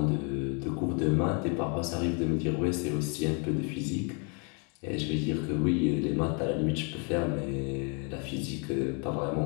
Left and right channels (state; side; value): quieter; right; 36.5 dB